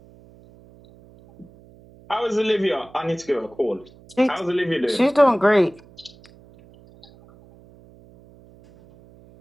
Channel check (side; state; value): right; noise; hum, 25 dB below the sound